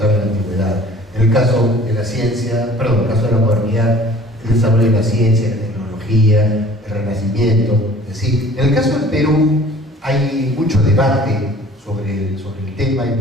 en la antigüedad.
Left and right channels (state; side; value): normal; both; correlation 0.50